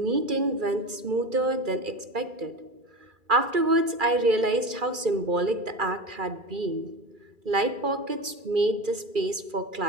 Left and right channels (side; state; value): left; late; 2.4 ms